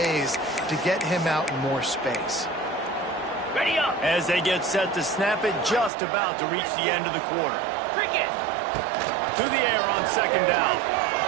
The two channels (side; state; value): left; drops out; at 5.9 s